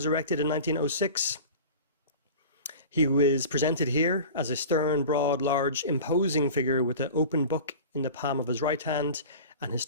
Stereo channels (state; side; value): inverted; both; correlation -0.36